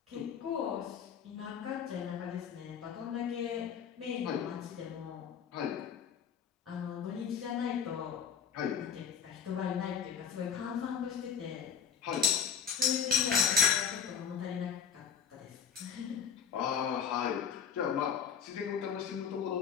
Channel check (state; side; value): quieter; right; 7.4 dB